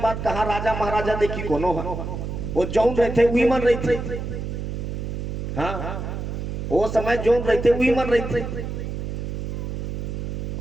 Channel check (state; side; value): noise; right; hum, 4 dB below the sound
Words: बात कहा, राजा महाराजा देखी कोनो है, वो जौन रहते वही मन रही थे। हाँ, वो समय जौन रहते वही मन रही थे।